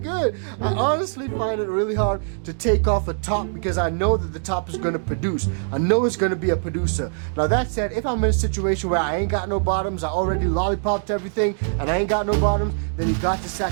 good. I honestly find it really hard to take off a top because I know that the top is going to produce. I know it's going to be a producer. Now that said, if I'm in a situation where I ain't got no bottoms, I already lollipopped everything, and I ain't got no bottoms, then you got to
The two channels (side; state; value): left; silent; digital silence